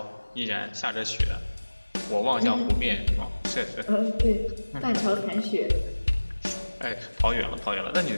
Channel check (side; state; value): both; inverted; correlation -1.00